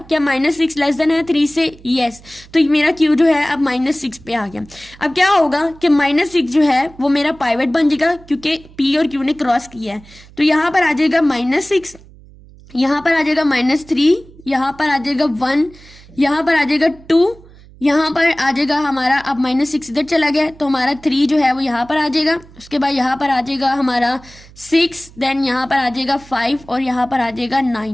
क्या -6 लेस देन है 3 से, यस, तो मेरा Q जो है अब -6 पे आ गया। अब क्या होगा कि -6 जो है वो मेरा पाइवेट बन जाएगा, क्योंकि P और Q ने क्रॉस किया है। तो यहाँ पर आ जाएगा -6, यहाँ पर आ जाएगा -3, यहाँ पर आ जाएगा 1, यहाँ पर आ जाएगा 2, यहाँ पर आ जाएगा हमारा, अब -6 इधर चला गया तो हमारा 3 जो है वो यहाँ पर आ जाएगा। उसके बाद यहाँ पर आ जाएगा हमारा 6, देन यहाँ पर आ जाएगा 5 और यहाँ पर आ जाएगा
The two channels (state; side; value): noise; right; hum, 23 dB below the sound